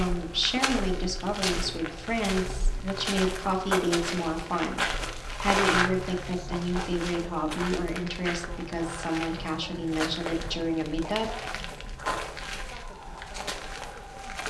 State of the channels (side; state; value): both; identical; correlation 1.00